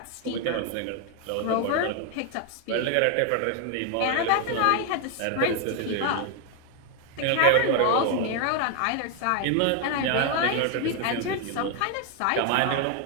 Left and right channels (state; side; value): different; both; correlation 0.00